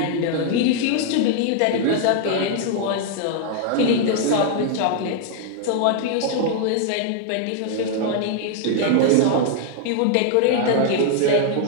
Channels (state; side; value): different; both; correlation 0.00